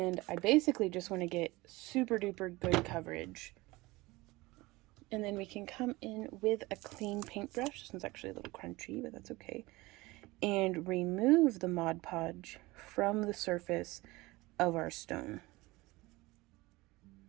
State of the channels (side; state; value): left; quieter; 21.3 dB